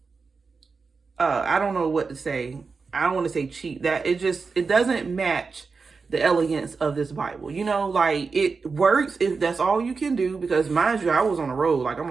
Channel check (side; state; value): left; quieter; 4.7 dB